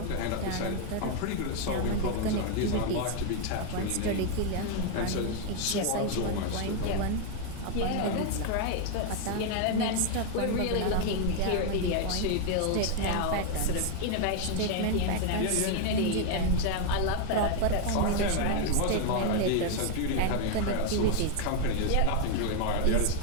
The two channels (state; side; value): different; both; correlation 0.00